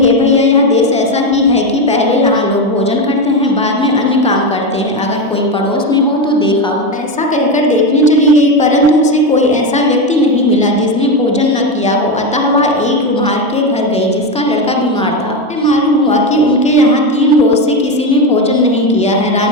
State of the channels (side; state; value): both; normal; correlation 0.13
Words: भैया, यह देश ऐसा ही है कि पहले यहाँ लोग भोजन करते हैं, बाद में अन्य काम करते हैं। अगर कोई पड़ोस में हो तो देखा हो। ऐसा कहकर देखने चली गई, परंतु उसे कोई ऐसा व्यक्ति नहीं मिला जिसने भोजन न किया हो। अतः वह एक कुम्हार के घर गई जिसका लड़का बीमार था। मालूम हुआ कि उनके यहाँ 3 रोज से किसी ने भोजन नहीं किया है।